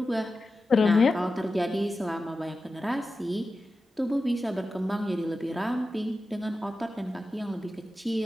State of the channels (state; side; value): normal; both; correlation 0.93